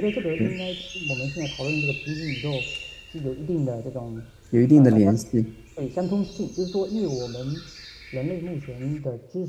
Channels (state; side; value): identical; both; correlation 1.00